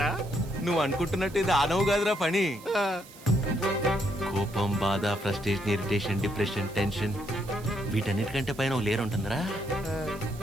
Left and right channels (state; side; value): noise; right; hiss, 20 dB below the sound